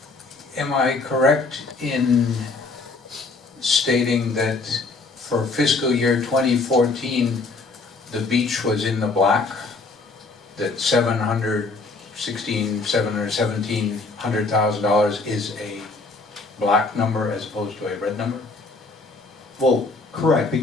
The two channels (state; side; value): quieter; right; 3.7 dB